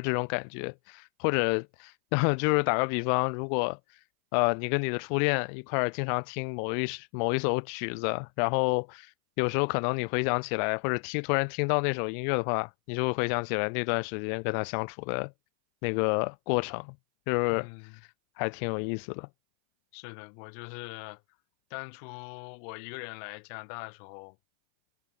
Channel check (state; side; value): silent; right; 58 dB below the other